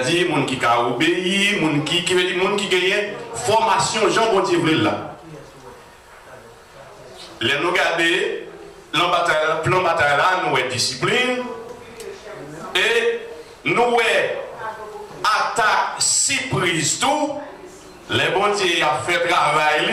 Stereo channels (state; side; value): identical; both; correlation 1.00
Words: les gens qui ont obéi, les gens qui gagnent formation, Jean bon Dieu là. Les nous garder, le plan bataille là, nous avons discipline. Et nous avons attaque surprise tout. Les bons dieux ont fait